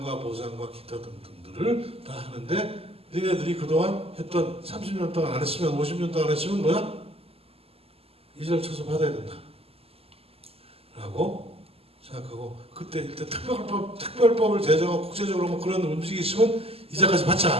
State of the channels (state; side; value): late; left; 0.29 ms